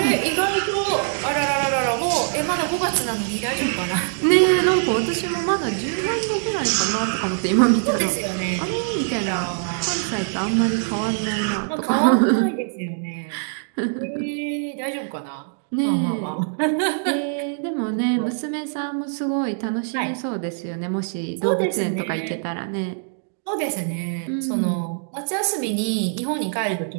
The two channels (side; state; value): left; silent; digital silence